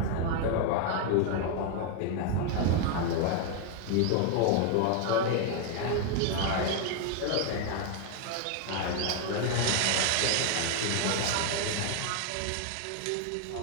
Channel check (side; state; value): both; different; correlation 0.01